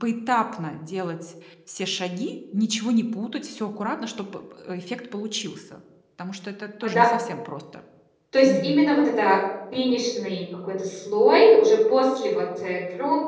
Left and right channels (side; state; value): both; identical; correlation 1.00